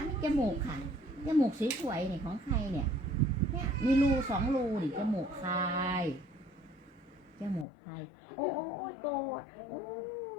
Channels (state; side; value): drops out; right; at 7.7 s